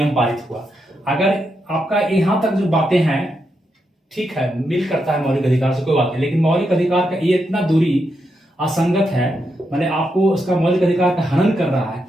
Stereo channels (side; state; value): both; normal; correlation 0.83